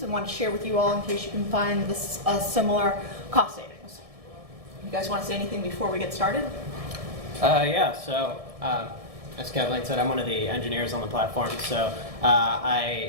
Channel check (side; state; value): left; late; 1.7 ms